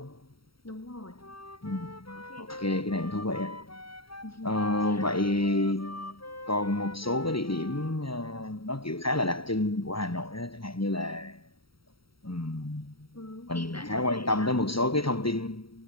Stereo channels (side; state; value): right; late; 0.75 ms